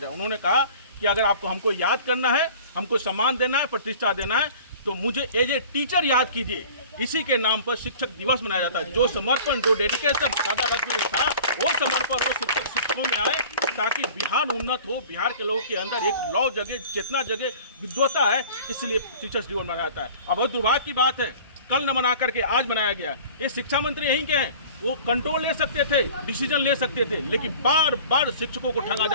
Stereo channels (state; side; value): inverted; both; correlation -0.44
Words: उन्होंने कहा कि अगर आपको हमको याद करना है, हमको सम्मान देना है, प्रतिष्ठा देना है, तो मुझे एज ए टीचर याद कीजिए। इसी के नाम पर शिक्षक दिवस मनाया जाता है। जो समर्पण, जो डेडिकेशन दादा था, वो समर्पण वो शिक्षकों में आए ताकि बिहार उन्नत हो, बिहार के लोगों के अंदर एक लौ जगह, चेतना जगह, विद्वता है, इसलिए टीचर्स दिवस मनाया जाता है। अब बहुत दुर्भाग्य की बात है, कल न मना करके आज मनाया गया। ये शिक्षा मंत्री यहीं के हैं, वो कंट्रोल ले सकते थे, डिसीजन ले सकते थे, लेकिन बार बार शिक्षकों को ठगा